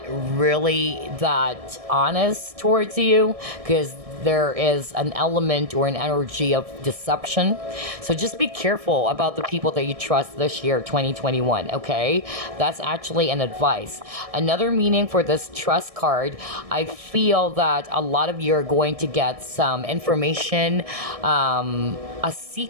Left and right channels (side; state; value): left; late; 1.6 ms